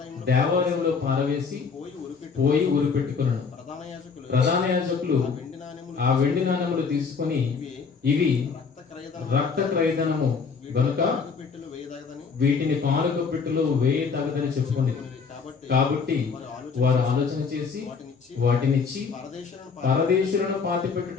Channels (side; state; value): right; quieter; 5.5 dB